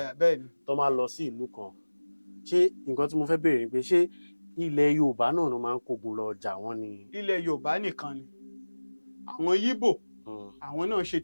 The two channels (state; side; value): inverted; both; correlation -1.00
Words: tó máa lọ sí ìlú kan ṣé nǹkan tí mo fẹ́ béèrè ni pé ṣé ilẹ̀ Yorùbá náà ló máa ń kógun lọ jà wọ́n ni. Ilẹ̀ Yorùbá nìkan ni àwọn Yíbò àwọn náà ṣe